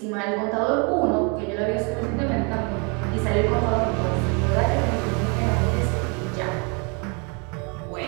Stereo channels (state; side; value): quieter; left; 33.6 dB